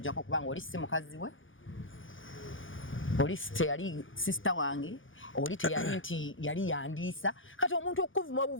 kubanga oli si mukazi we oli teyali sister wange oli teyali nti yali yandiisa kati omuntu okuvuma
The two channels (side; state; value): right; late; 0.57 ms